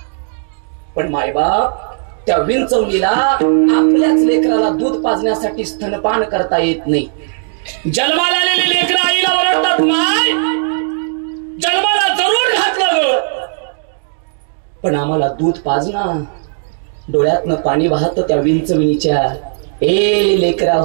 पण मायबाप त्या विंचवणीला आपल्याच लेकराला दूध पाजण्यासाठी स्तनपान करता येत नाही. जन्माला आलेले लेकर आईला ओरडतात, माय जन्माला जरूर घातलं ग, पण आम्हाला दूध पाजना. डोळ्यातनं पाणी वाहत त्या विंचविणीच्या. ए लेकरा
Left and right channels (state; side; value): silent; left; digital silence